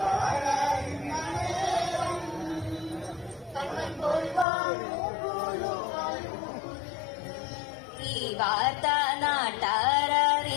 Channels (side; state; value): right; drops out; at 4.5 s